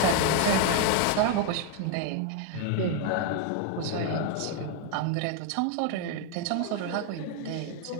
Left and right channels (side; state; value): both; different; correlation 0.00